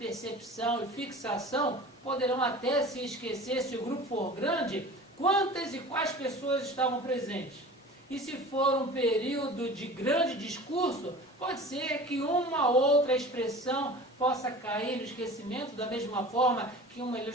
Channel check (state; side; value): normal; both; correlation 0.39